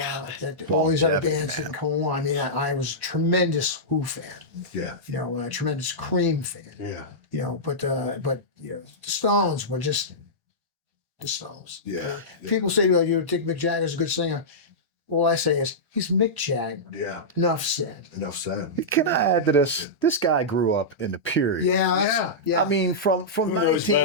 all these other bands didn't come on. I mean, I was a tremendous Who fan, Yeah. a tremendous Cream fan, Yeah. but the Stones were just the Stones. Yeah. People say, well, you think Mick Jagger's a good singer. All I say is, he's Mick Jagger. Yeah. Enough said. Enough said. Can I add to this? This guy grew up in the period. Yeah. I mean, from knows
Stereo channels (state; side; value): normal; both; correlation -0.13